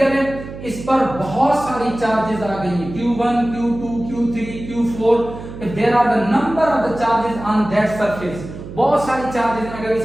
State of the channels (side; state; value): right; noise; hum, 12 dB below the sound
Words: है, इस पर बहुत सारी चार्जेस आ गई हैं, Q1, Q2, Q3, Q4, there are the number of the charges on that surface. बहुत सारी चार्जेस हैं अगर